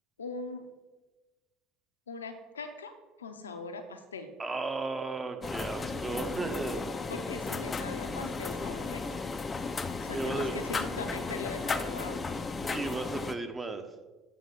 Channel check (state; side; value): normal; both; correlation 0.66